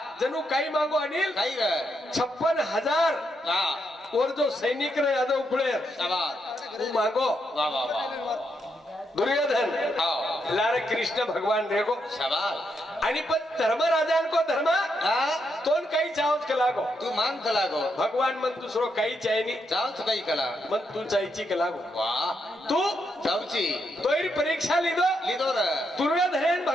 जणू काही मागो अनिल काही रे 56,000 वाह और जो सैनिक रे यादव पुढे शाबास तू मागो वाह वाह वाह दुर्योधन आओ लारे कृष्ण भगवान रेगो शाबास आणि पण धर्मराजांको धर्म हा तोन काही चावच कलागो तू मान कला गो भगवान मन दुसरो काही चायनी चावच काही कला मन तू चायची कलागो वाह तू चावची तोयरी परीक्षा लिदो लिदो रे दुर्योधन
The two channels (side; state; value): both; normal; correlation 0.80